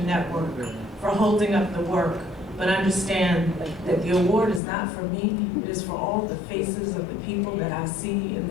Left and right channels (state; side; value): drops out; right; at 4.6 s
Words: Network, for holding up the work, but understand that the award is not for me, it is for all the faces of the people that I see in